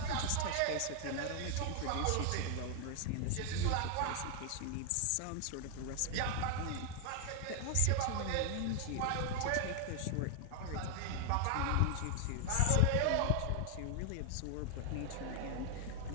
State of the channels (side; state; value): both; different; correlation 0.00